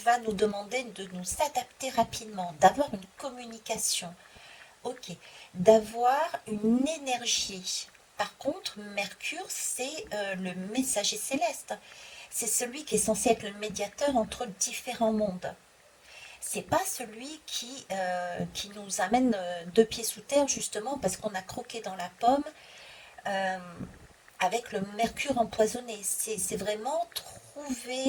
nous demander de nous adapter rapidement, d'avoir une communication. Ok, d'avoir une énergie. Par contre, Mercure, c'est le messager céleste. C'est celui qui est censé être le médiateur entre différents mondes. C'est pas celui qui nous amène deux pieds sous terre, justement, parce qu'on a croqué dans la pomme euh, avec le mercure empoisonné. C'est vraiment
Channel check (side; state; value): both; identical; correlation 1.00